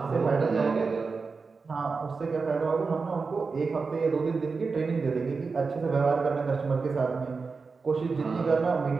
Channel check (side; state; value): left; quieter; 4.6 dB